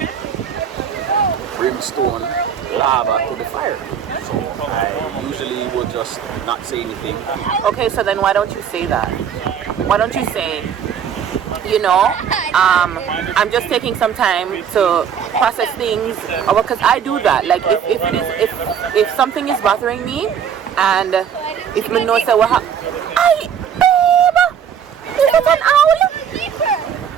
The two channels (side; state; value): left; quieter; 8.0 dB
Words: brimstone, lava to the fire. So I usually will just not say anything. Okay, so then why don't you say that? Why don't you say, you know, I'm just taking some time to process things, because I do that. Like, if something is bothering me, and if me know say, well, I babe, is it an owl?